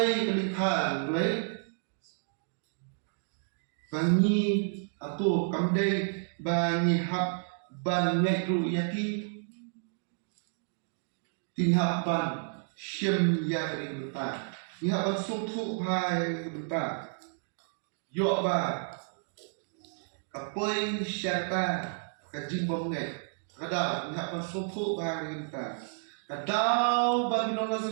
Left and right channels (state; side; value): silent; left; digital silence